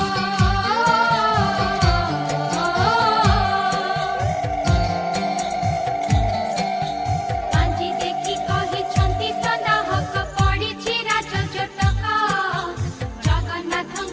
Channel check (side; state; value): both; identical; correlation 1.00